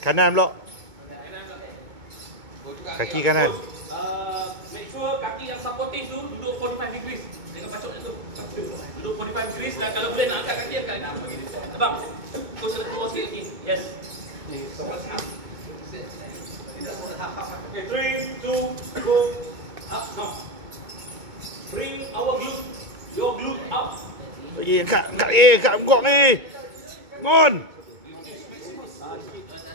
Kanan pula. Kaki kanan. Make sure kaki yang supportive tu duduk 45 degrees. Dengan pacoknya tu. Duduk 45 degrees dan kalau boleh nak angkat kaki angkat. Terbang. Coach nak keluar sikit lagi. Yes. Okay, 3, 2, go. Up now. Bring your glute up. Angkat punggung ni. Mon.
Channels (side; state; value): left; late; 2.2 ms